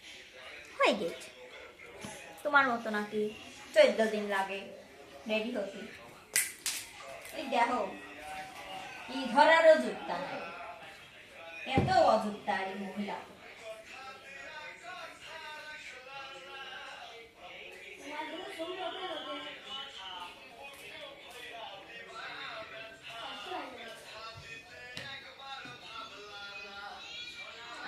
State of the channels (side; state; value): both; identical; correlation 1.00